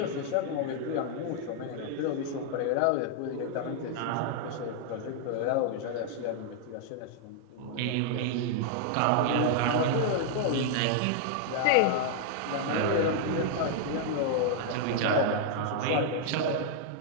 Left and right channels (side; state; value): both; different; correlation -0.01